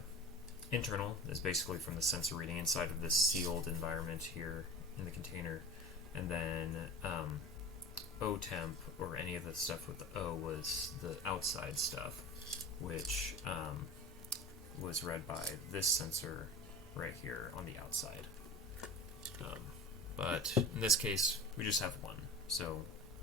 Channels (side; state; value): both; normal; correlation 0.34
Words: internal is basically from the sensor reading inside of this sealed environment here in the container, and then O temp, or any of the stuff with the O, was the outside stuff, which was read by this sensor right here on the outside. But in this case, we just have one, so